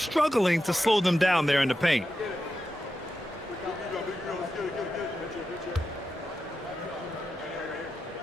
to slow them down there in the paint.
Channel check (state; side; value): normal; both; correlation 0.89